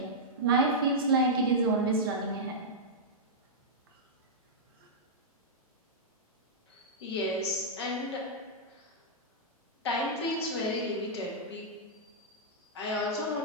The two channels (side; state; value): both; normal; correlation -0.09